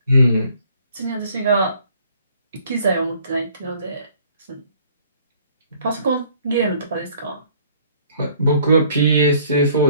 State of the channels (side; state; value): both; inverted; correlation -0.59